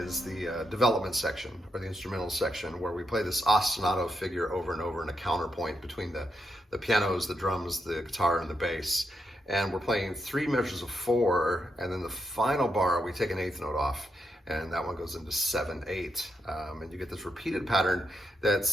the development section, or the instrumental section, where we play this ostinato figure over and over in a counterpoint between the pianos, the drums, the guitar, and the bass. And we're playing 3 measures of 4, and then the final bar, we take an 8th note off, and that one goes into 7/8. And you get this repeated pattern that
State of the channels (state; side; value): normal; both; correlation 0.82